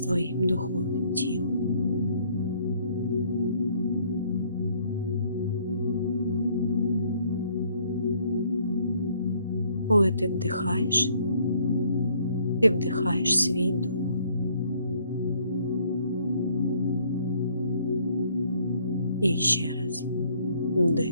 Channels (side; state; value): both; inverted; correlation -0.64